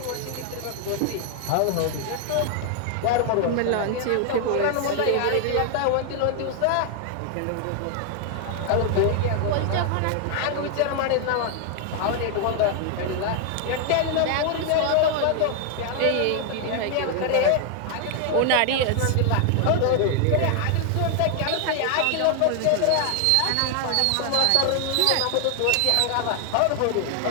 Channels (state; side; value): different; both; correlation 0.00